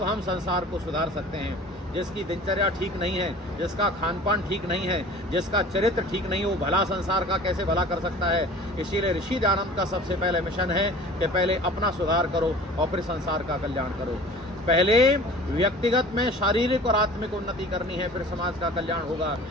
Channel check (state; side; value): normal; both; correlation 0.44